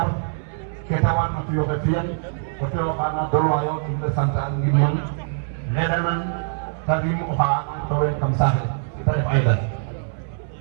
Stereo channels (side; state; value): left; silent; 59 dB below the other